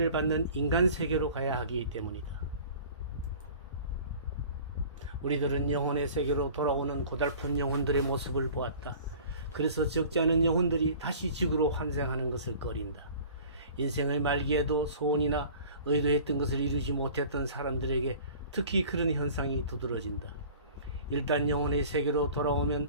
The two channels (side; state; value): both; inverted; correlation -0.45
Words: 받는 인간 세계로 가야 하기 때문이다. 우리들은 영혼의 세계로 돌아오는 고달픈 영혼들의 모습을 보았다. 그래서 적지 않은 영혼들이 다시 지구로 환생하는 것을 꺼린다. 인생의 말기에도 소원이나 의도했던 것을 이루지 못했던 사람들에게 특히 그런 현상이 두드러진다. 일단 영혼의 세계로 돌아오면